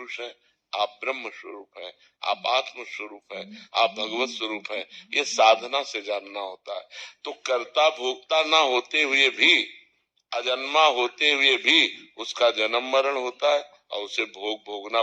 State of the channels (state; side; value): identical; both; correlation 1.00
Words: है, आप ब्रह्म स्वरूप है, आप आत्म स्वरूप है, आप भगवत स्वरूप है। ये साधना से जानना होता है। तो कर्ता भोक्ता ना होते हुए भी, अजन्मा होते हुए भी उसका जन्म मरण होता है और उसे भोगना